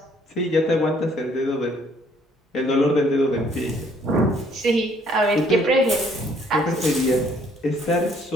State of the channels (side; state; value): both; normal; correlation 0.63